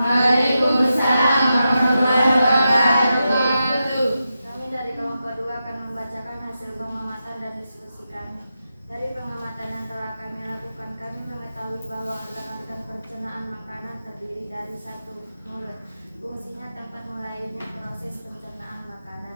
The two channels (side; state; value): both; inverted; correlation -0.89